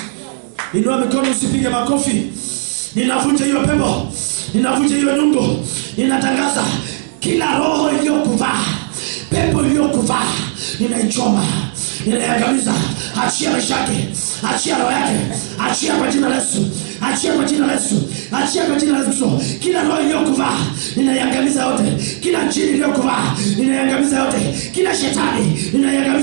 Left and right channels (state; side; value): silent; left; digital silence